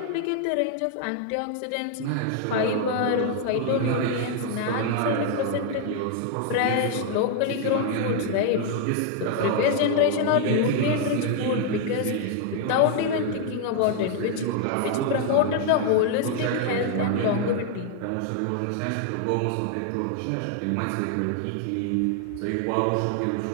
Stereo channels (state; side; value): different; both; correlation 0.00